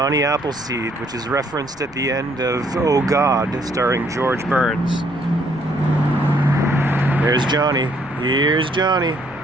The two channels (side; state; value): left; noise; rumble, 23 dB below the sound